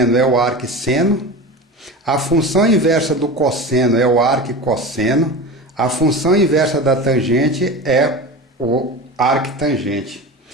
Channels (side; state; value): both; normal; correlation 0.29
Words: é o arcseno, a função inversa do cosseno é o arquicosseno, a função inversa da tangente é o arctangente.